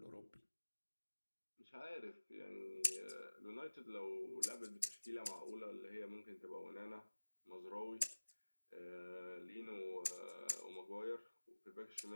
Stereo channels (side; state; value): both; inverted; correlation -1.00